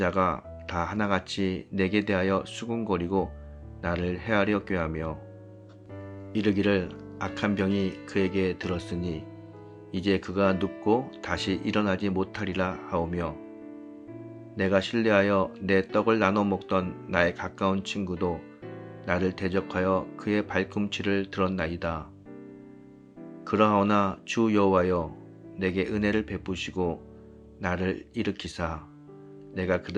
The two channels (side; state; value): both; identical; correlation 1.00